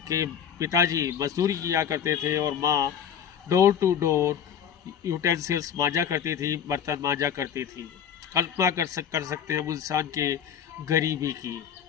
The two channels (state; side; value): quieter; right; 8.4 dB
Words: पिताजी मजदूरी किया करते थे और माँ डोर टू डोर यूटेंसिल्स मांजा करती थी, बर्तन मांजा करती थी। कल्पना कर सकते हैं हम इंसान के गरीबी की।